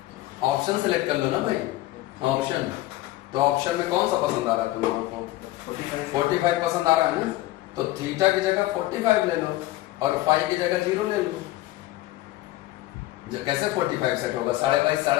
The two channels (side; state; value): right; quieter; 16.8 dB